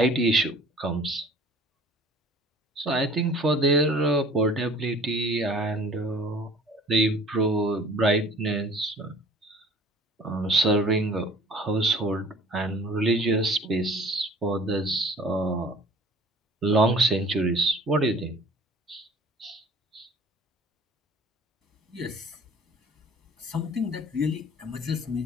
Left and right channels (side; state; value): both; normal; correlation 0.48